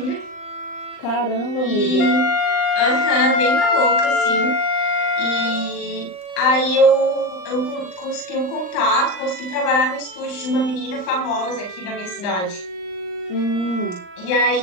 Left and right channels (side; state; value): right; late; 39 ms